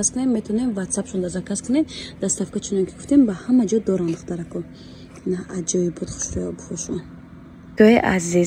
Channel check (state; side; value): identical; both; correlation 1.00